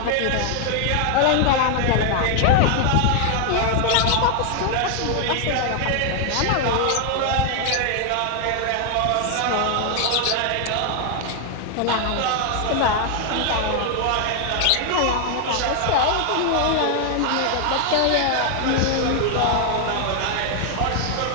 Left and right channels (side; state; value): both; different; correlation 0.00